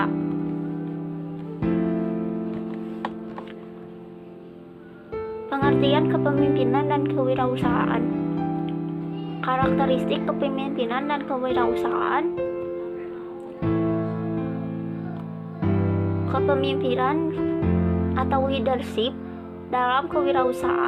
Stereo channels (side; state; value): both; identical; correlation 1.00